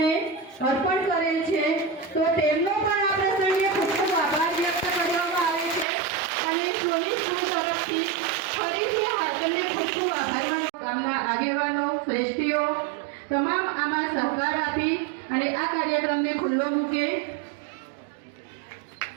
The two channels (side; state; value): left; drops out; at 5.9 s